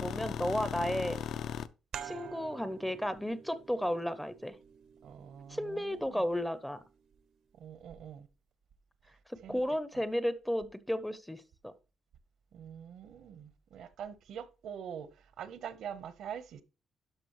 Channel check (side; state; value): both; normal; correlation 0.91